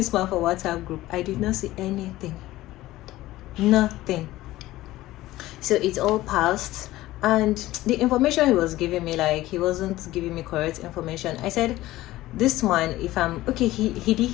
man for WhatsApp group. I did not see anything, nothing. So it's all passed, and the information he was giving me, like, he wasn't giving me correct information. I said, this man, if I'm okay, he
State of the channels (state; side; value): quieter; right; 16.6 dB